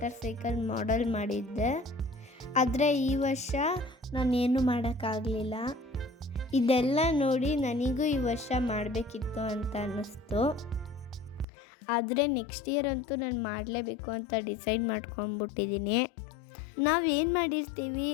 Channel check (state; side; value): drops out; right; at 11.5 s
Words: ಸೈಕಲ್ ಮಾಡೆಲ್ ಮಾಡಿದ್ದೆ. ಆದರೆ ಈ ವರ್ಷ ನಾನೇನು ಮಾಡೋಕ್ಕಾಗಲಿಲ್ಲ. ಇದೆಲ್ಲ ನೋಡಿ ನನಗೂ ಈ ವರ್ಷ ಮಾಡಬೇಕಿತ್ತು ಅಂತ ಅನ್ನಿಸ್ತು. ಆದರೆ ನೆಕ್ಸ್ಟ್ ಇಯರ್ ಅಂತೂ ನಾನು ಮಾಡಲೇಬೇಕು ಅಂತ ಡಿಸೈಡ್ ಮಾಡ್ಕೊಂಡ್ಬಿಟ್ಟಿದ್ದೀನಿ. ನಾವೇನು ಮಾಡಿರ್ತೀವಿ